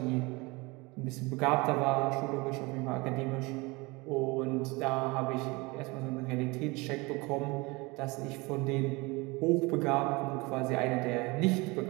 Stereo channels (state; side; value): quieter; left; 24.9 dB